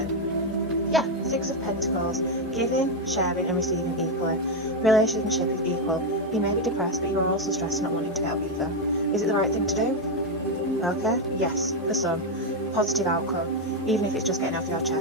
Yeah, Six of Pentacles, giving, sharing and receiving equally. Relationship is equal. You may be depressed, but you are also stressed and not wanting to help either. Is it the right thing to do? Okay, yes, for some. Positive outcome, even if it's just getting off your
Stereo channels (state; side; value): normal; both; correlation 0.04